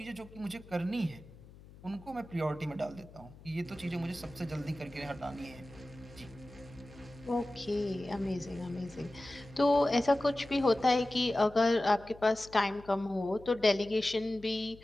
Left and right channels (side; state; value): left; noise; hum, 21 dB below the sound